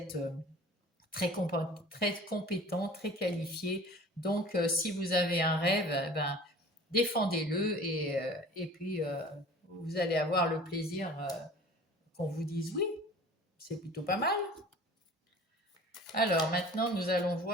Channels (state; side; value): normal; both; correlation 0.44